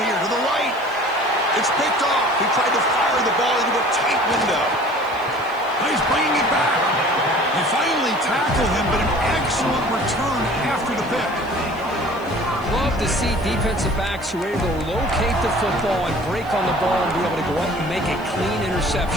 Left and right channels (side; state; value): left; noise; hiss, 25 dB below the sound